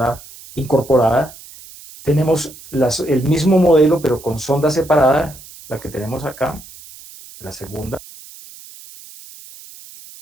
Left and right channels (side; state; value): right; noise; hiss, 19 dB below the sound